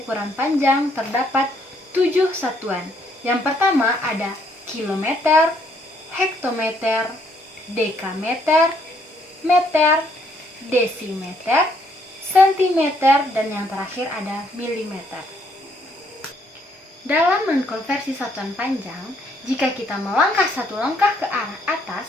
panjang terdapat 7 satuan. Yang pertama ada kilometer, hektometer, dekameter, meter, desimeter, sentimeter, dan yang terakhir ada milimeter. Dalam mengkonversi satuan panjang, jika kita melangkah satu langkah ke arah atas,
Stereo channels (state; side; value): normal; both; correlation 0.69